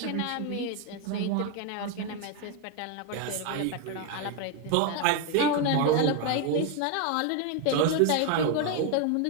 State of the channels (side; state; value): both; different; correlation 0.01